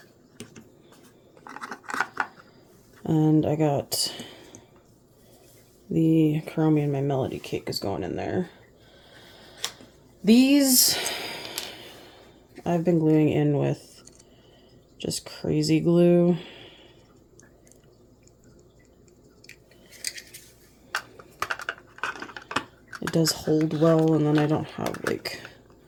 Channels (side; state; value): both; identical; correlation 1.00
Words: And I got the Kuromi and My Melody cake is going in there. These I've been gluing in with just crazy glue. It does hold well, and then I don't have like